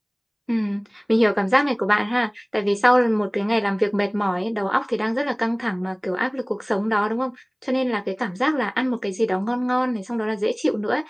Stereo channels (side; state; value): both; identical; correlation 1.00